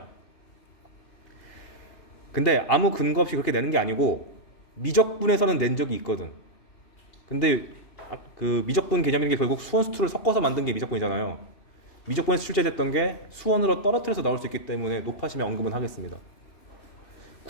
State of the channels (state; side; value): late; right; 2.7 ms